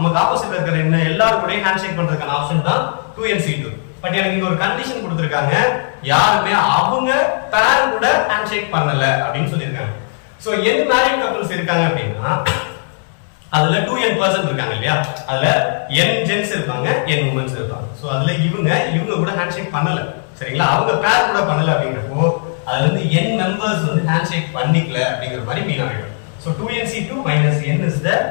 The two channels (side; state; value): right; silent; digital silence